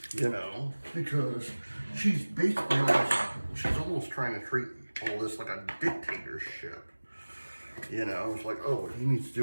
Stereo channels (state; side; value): inverted; both; correlation -1.00